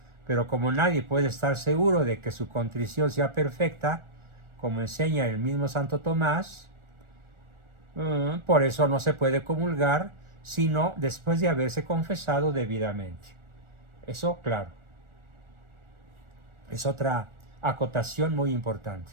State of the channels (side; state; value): left; late; 1.4 ms